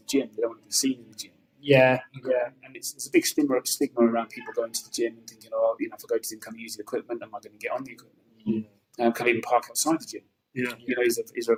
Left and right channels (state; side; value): identical; both; correlation 1.00